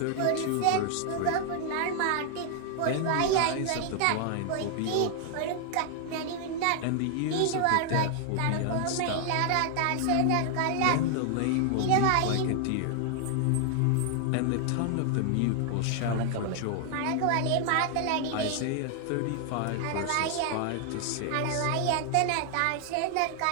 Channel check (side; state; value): both; different; correlation 0.00